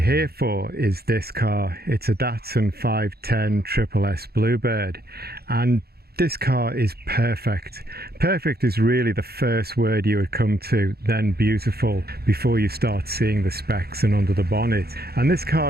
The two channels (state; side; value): late; left; 0.46 ms